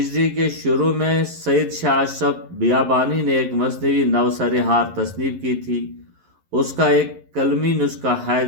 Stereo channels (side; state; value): left; late; 11 ms